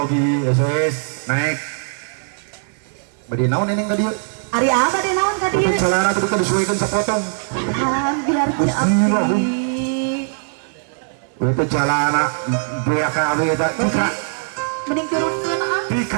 SOS naik bade naon eneng ka dieu Ari apa deh naon ka dieu celana teh disuekeun sapotong biar teu abdi we teh celana beak ka abdi eta tika mending turunkeun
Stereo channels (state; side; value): silent; left; 56 dB below the other